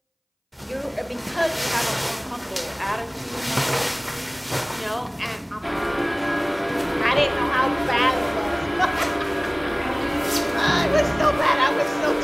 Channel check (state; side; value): identical; both; correlation 1.00